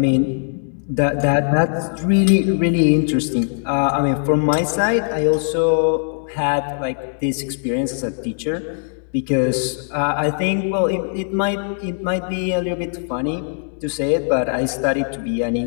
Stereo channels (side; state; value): right; silent; 66 dB below the other